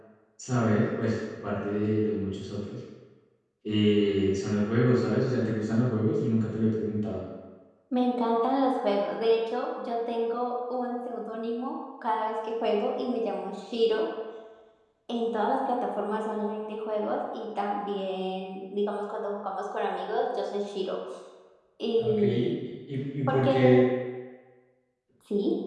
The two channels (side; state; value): both; identical; correlation 1.00